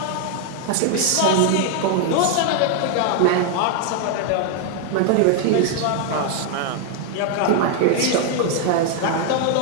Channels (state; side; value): different; both; correlation 0.00